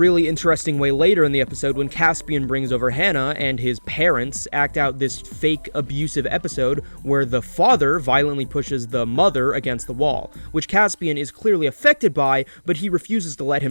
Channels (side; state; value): both; inverted; correlation -1.00